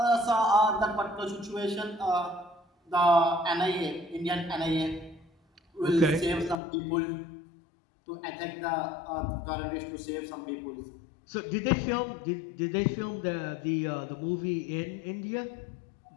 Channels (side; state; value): right; drops out; at 6.6 s